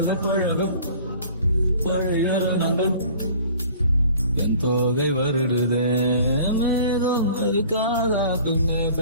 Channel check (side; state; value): both; inverted; correlation -0.48